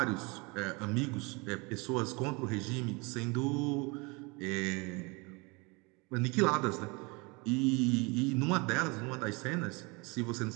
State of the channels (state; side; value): quieter; left; 27.9 dB